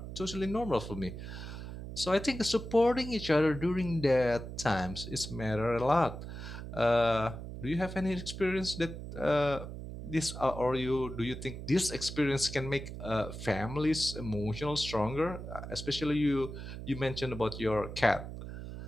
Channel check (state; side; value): noise; right; hum, 9 dB below the sound